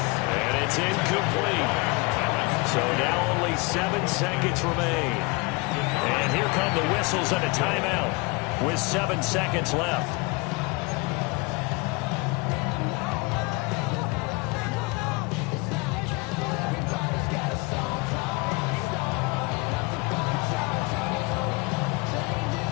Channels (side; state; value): right; quieter; 27.1 dB